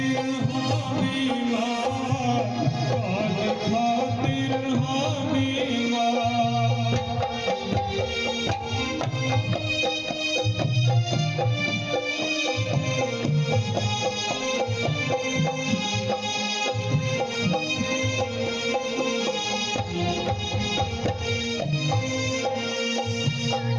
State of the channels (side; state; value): both; identical; correlation 1.00